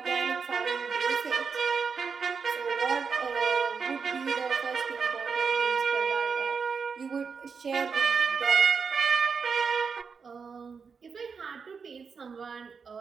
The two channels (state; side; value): quieter; left; 5.7 dB